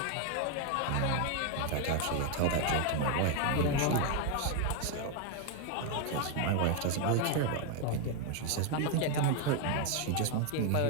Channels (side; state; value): both; different; correlation 0.01